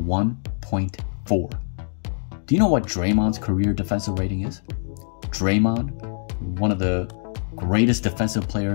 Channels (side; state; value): right; silent; digital silence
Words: Do you know what Draymond's career defensive rating is? Draymond, one of the greatest defensive